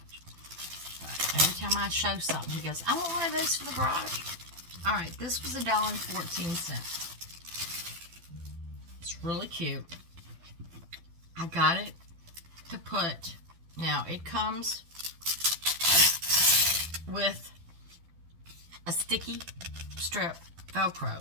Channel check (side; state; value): left; late; 12 ms